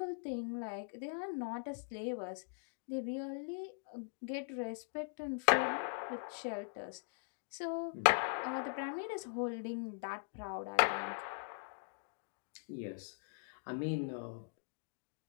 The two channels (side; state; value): right; silent; digital silence